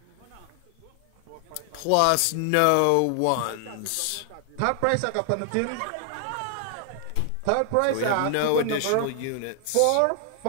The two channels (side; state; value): both; different; correlation 0.00